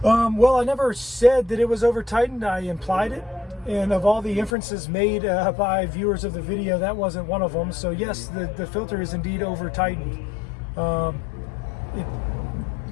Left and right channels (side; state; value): right; drops out; at 4.5 s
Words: Well, I never said that it was over tightened. I implied it. And of all the inferences made by viewers of the video, that wasn't one of them. So yes, the filter is indeed over tightened. I